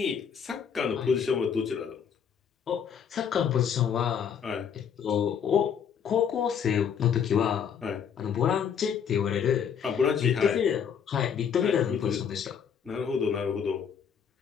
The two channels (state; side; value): quieter; right; 7.5 dB